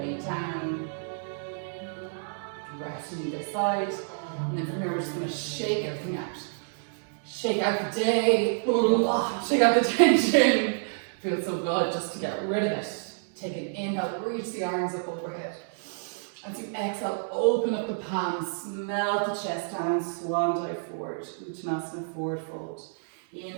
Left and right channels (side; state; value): left; silent; digital silence